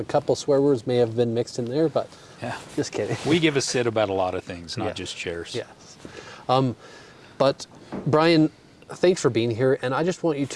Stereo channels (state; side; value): identical; both; correlation 1.00